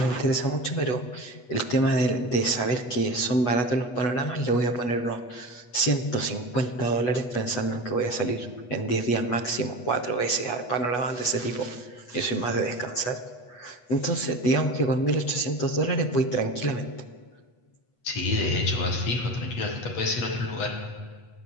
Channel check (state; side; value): late; right; 8.2 ms